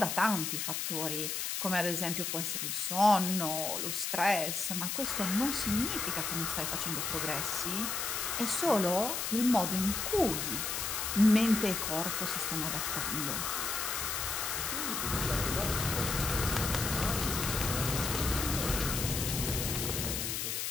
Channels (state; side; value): noise; left; hiss, 2 dB below the sound